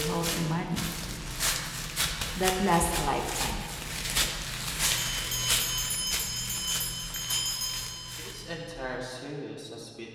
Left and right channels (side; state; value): both; identical; correlation 1.00